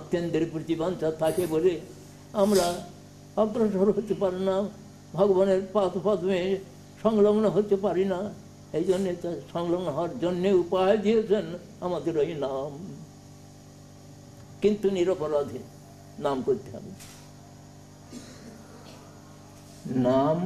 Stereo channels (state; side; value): identical; both; correlation 1.00